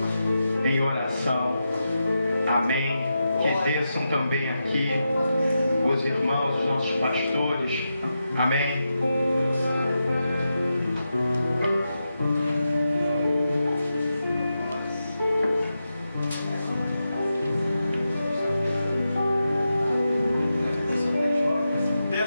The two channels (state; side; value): inverted; both; correlation -0.88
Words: em oração. Amém? Que desçam também aqui os irmãos, os nossos pastores. Amém?